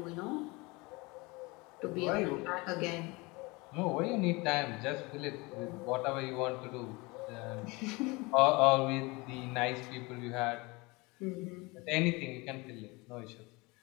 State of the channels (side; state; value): right; quieter; 25.1 dB